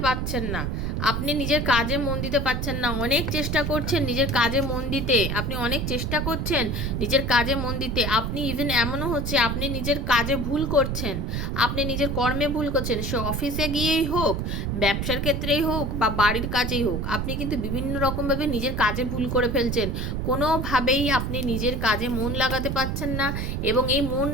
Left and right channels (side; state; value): right; noise; rumble, 2 dB below the sound